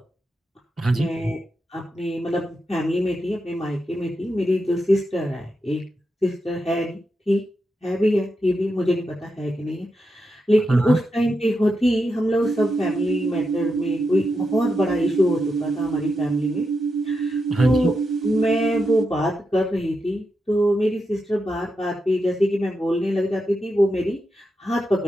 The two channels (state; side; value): normal; both; correlation 0.86